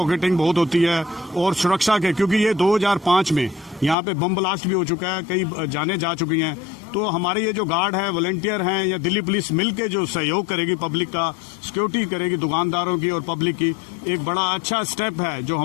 बहुत होती है और सुरक्षा के, क्योंकि ये 2005 में यहाँ पे बम ब्लास्ट भी हो चुका है, कई जाने जा चुकी हैं। तो हमारे ये जो गार्ड है, वॉलंटियर हैं या दिल्ली पुलिस मिल के जो सहयोग करेगी, पब्लिक का सिक्योरिटी करेगी, दुकानदारों की और पब्लिक की, एक बड़ा अच्छा स्टेप है जो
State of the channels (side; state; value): right; drops out; at 4.0 s